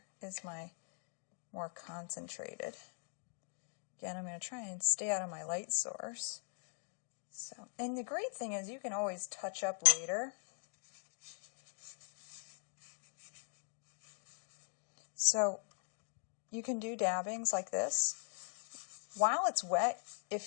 is my more concentrated. Again, I'm going to try and stay out of my light source. So, and the great thing is you can always touch up later. So you can do dabbings like this. While it's wet,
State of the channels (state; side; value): silent; right; 50 dB below the other